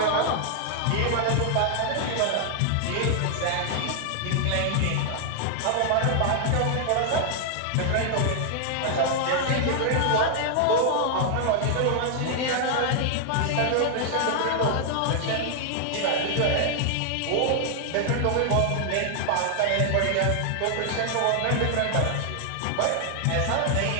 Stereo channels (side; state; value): both; different; correlation 0.00